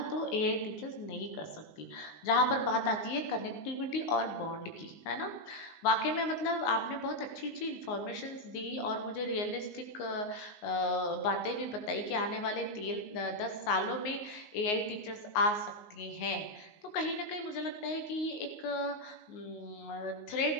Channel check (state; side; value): late; right; 19 ms